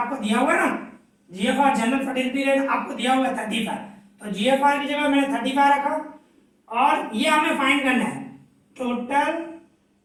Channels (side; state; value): both; identical; correlation 1.00